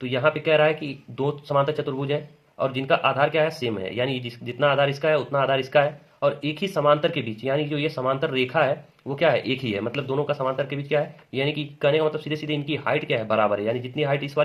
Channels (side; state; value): both; identical; correlation 1.00